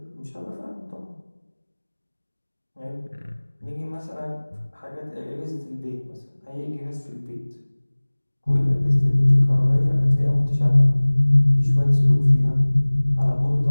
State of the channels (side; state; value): both; inverted; correlation -1.00